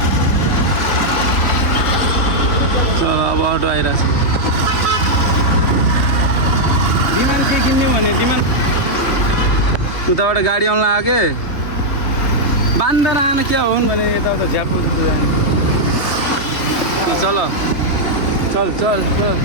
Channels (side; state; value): right; late; 3.3 ms